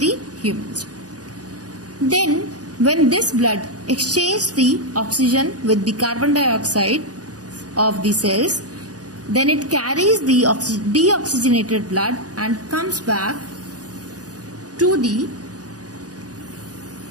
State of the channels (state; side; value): late; left; 0.68 ms